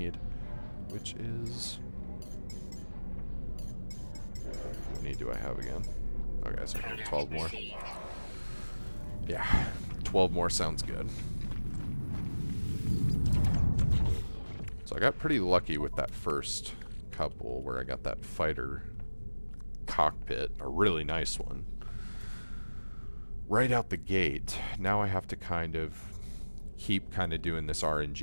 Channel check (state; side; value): inverted; both; correlation -1.00